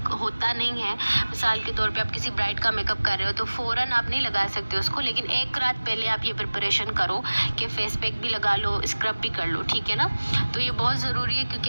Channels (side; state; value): both; inverted; correlation -1.00